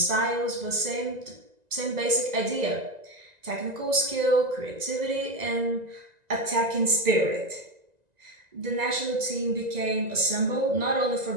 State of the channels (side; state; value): left; late; 1.9 ms